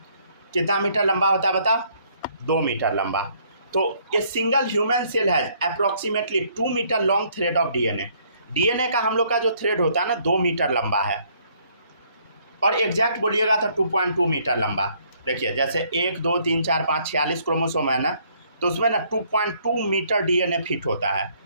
कितना मीटर लंबा होता है बता, 2 मीटर लंबा। तो ये single human cell has approximately 2 metre long thread of DNA. DNA का हम लोग का जो थ्रेड होता है ना 2 मीटर लंबा है, और एग्जैक्ट बोलिएगा तो 2.2 मीटर लंबा। देखिए जैसे 1 2 3 4 5 46 क्रोमोसोम है ना, तो उसमें ना 2.2 मीटर डीएनए फिट होता है।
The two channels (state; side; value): inverted; both; correlation -0.65